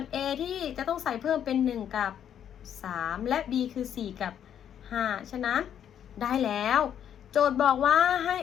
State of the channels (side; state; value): right; quieter; 9.4 dB